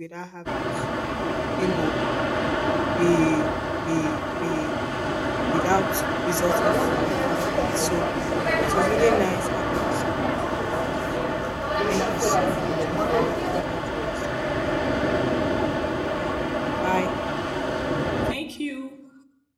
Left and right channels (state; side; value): identical; both; correlation 1.00